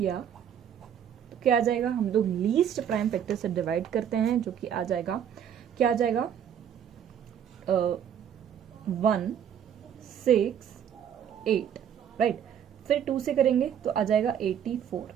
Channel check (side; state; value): left; quieter; 9.0 dB